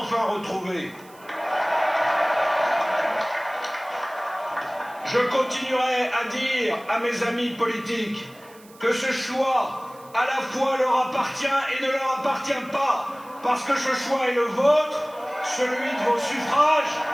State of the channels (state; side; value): noise; right; hiss, 25 dB below the sound